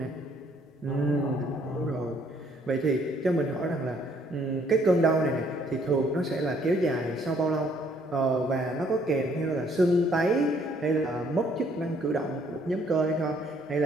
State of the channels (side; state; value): both; normal; correlation 0.64